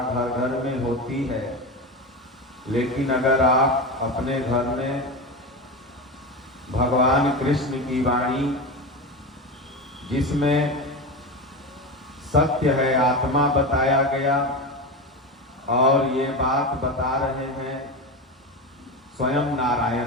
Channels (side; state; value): both; normal; correlation 0.21